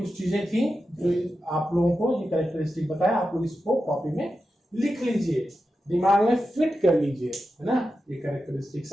चीजें थी जो आप लोगों को ये कैरेक्टरिस्टिक बताया, आप लोग इसको कॉपी में लिख लीजिए, दिमाग में फिट कर लीजिए, है ना। ये कैरेक्टरिस्टिक्स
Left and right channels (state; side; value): normal; both; correlation 0.90